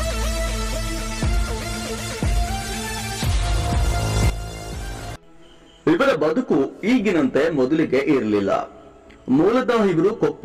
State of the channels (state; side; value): identical; both; correlation 1.00